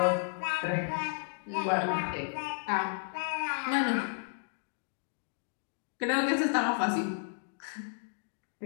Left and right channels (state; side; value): silent; right; digital silence